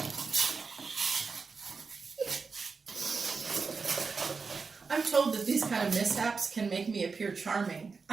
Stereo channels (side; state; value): left; quieter; 4.8 dB